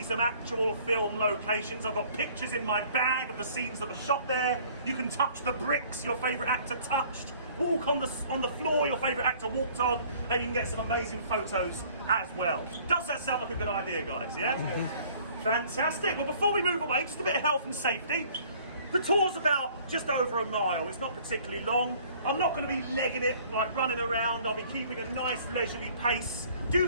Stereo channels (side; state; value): both; inverted; correlation -0.55